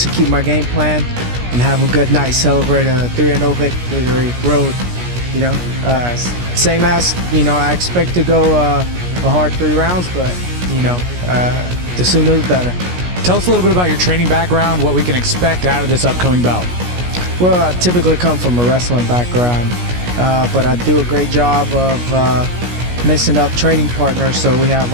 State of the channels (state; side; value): late; left; 17 ms